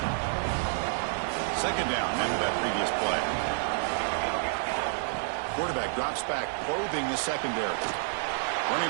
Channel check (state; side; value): silent; left; 58 dB below the other